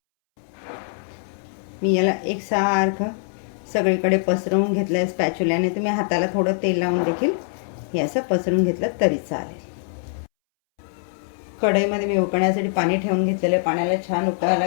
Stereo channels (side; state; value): right; silent; 64 dB below the other